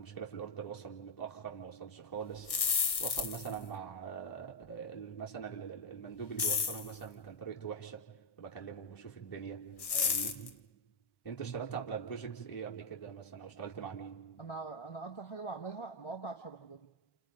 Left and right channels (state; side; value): late; right; 1.6 ms